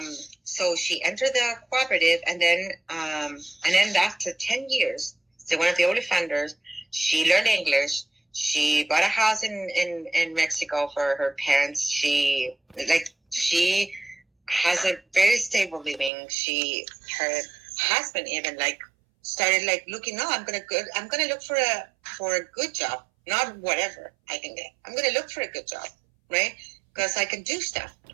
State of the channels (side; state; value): left; drops out; at 16.1 s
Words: so she entered the cooperative, and then after 10 years, so one of the early founders, she learned English. She bought a house in Mexico for her parents. She has a very stable living. Her husband even started looking. No, I'm gonna look for a good job, not whatever I can get. I'm gonna look for a good job, right? Because I can do stuff,